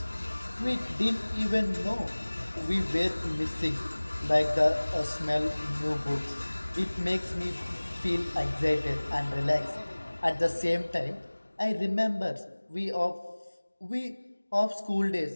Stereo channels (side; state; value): both; inverted; correlation -1.00